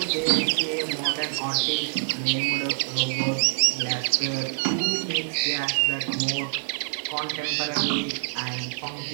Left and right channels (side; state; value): left; silent; digital silence